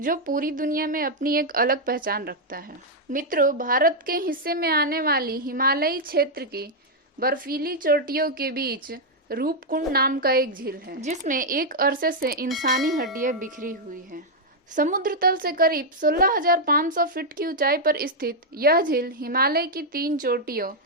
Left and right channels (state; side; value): normal; both; correlation -0.02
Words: पूरी दुनिया में अपनी एक अलग पहचान रखता है। मित्रों, भारत के हिस्से में आने वाली हिमालयी क्षेत्र की बर्फीली चोटियों के बीच रूपकुंड नाम का एक झील है, जिसमें एक अरसे से इंसानी हड्डियां बिखरी हुई हैं। समुद्र तल से करीब 16,500 फीट की ऊंचाई पर स्थित यह झील हिमालय की 3 चोटियों,